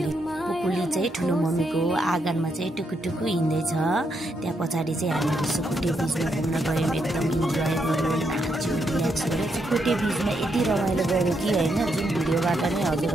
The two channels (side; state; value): both; normal; correlation 0.79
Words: चाहिँ ठुलो मम्मीको आँगनमा चाहिँ टुकुटुकु हिँड्दै छ। त्यहाँ पछाडी चाहिँ हामी सुकुटे बीचमा घुम्न गयौं। एकदम इन्जोय गर्यौं, नाच्यौं, रिल्याक्स गर्यौं। सुकुटे बीचमा यति रमाइलो गर्यो कि हैन, जुन भिडियोबाट नै